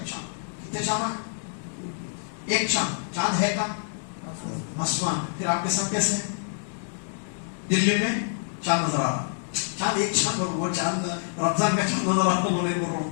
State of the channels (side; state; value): right; silent; digital silence